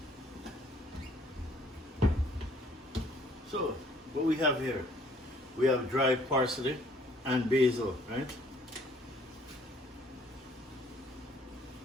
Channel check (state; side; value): normal; both; correlation 0.60